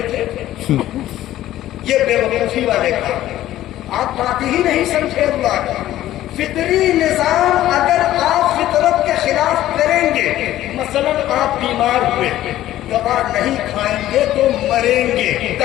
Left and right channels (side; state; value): right; quieter; 13.9 dB